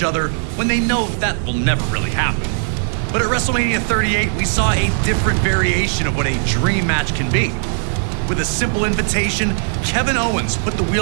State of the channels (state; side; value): silent; left; digital silence